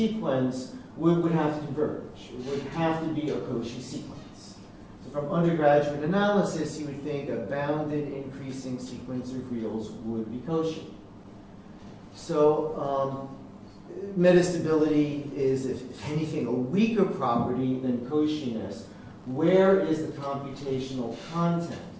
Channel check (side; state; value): both; identical; correlation 1.00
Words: would have to converge. It would have to be a Cauchy sequence. So from undergraduate analysis, you would think a bounded increasing sequence of reals would be Cauchy. So metastability is, if anything, a weaker property than Cauchyness. Where is the computational content?